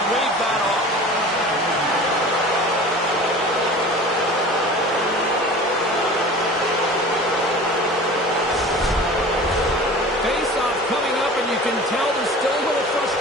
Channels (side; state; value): both; normal; correlation 0.39